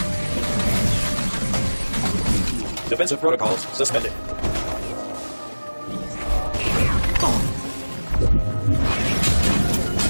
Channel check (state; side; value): inverted; both; correlation -1.00